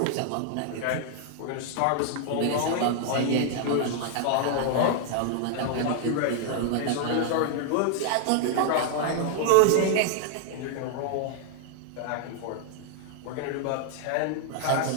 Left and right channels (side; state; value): both; different; correlation 0.00